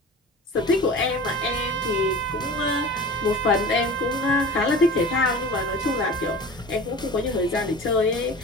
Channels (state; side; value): normal; both; correlation 0.37